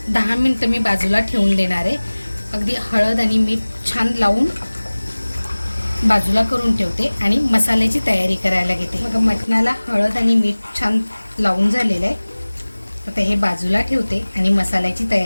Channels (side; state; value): both; inverted; correlation -1.00